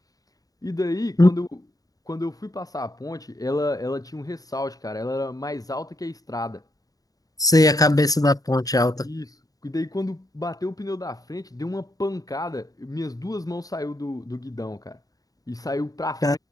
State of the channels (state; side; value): late; right; 0.18 ms